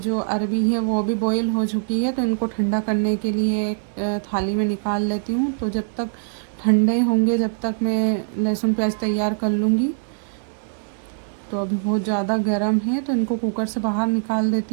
अरबी है वो भी बॉईल हो चुकी है, तो इनको ठंडा करने के लिए एक थाली में निकाल लेती हूँ। तो जब तक ठंडे होंगे जब तक मैं लहसुन प्याज तैयार कर लूँगी। तो अभी बहुत ज़्यादा गर्म है, तो इनको कुकर से बाहर निकाल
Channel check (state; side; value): silent; left; digital silence